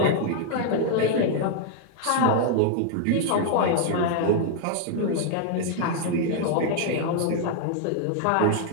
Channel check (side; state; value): both; different; correlation 0.00